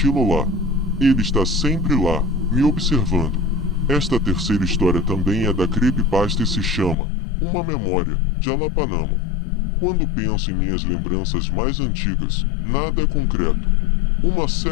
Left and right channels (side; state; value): right; drops out; at 7.0 s